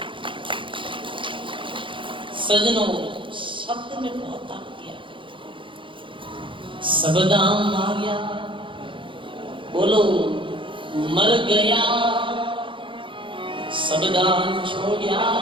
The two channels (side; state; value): left; late; 0.25 ms